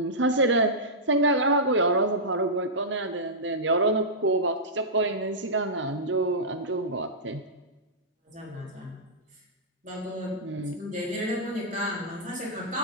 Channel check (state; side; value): normal; both; correlation -0.14